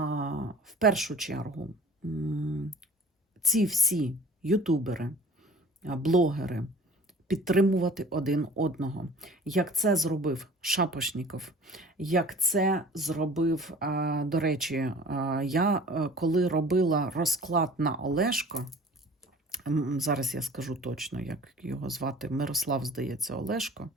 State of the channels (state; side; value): normal; both; correlation 0.46